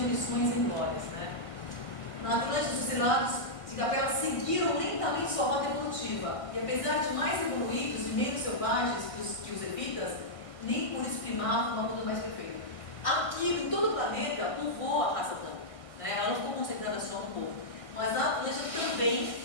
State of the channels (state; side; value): late; right; 1.6 ms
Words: e glórias, né? Na Atlântida, os exilados de Capela seguiram lentamente sua rota evolutiva, e apesar de mais evoluídos e menos selvagens que os evitas, nem por isso primavam uma luta mais perfeita. Aqui, em todo o planeta, povoou a raça branca, né? Ela não ficou concentrada só no povo, mas na Atlântida também